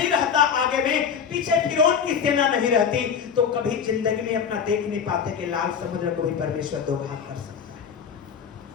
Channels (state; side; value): quieter; right; 7.1 dB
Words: रहता आगे में, पीछे फिरौन की सेना नहीं रहती, तो कभी जिंदगी में अपना देख नहीं पाते कि लाल समुद्र को भी परमेश्वर दो भाग कर सकता है।